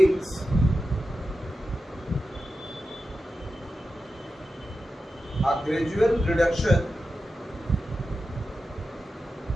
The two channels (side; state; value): both; normal; correlation 0.92